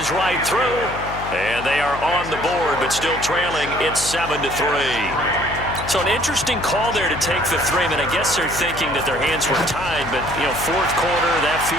right through. And they are on the board, but still trailing. It's 7-3. So an interesting call there to take the 3. I mean, I guess they're thinking that their hands were tied, but, you know, 4th quarter, that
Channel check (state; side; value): noise; left; hum, 11 dB below the sound